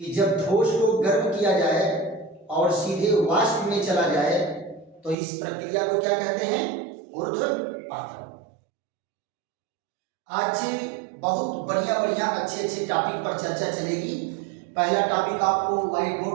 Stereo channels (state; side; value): drops out; left; at 5.2 s